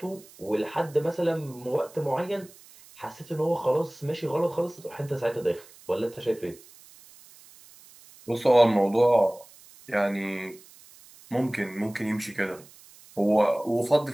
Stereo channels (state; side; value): noise; right; hiss, 23 dB below the sound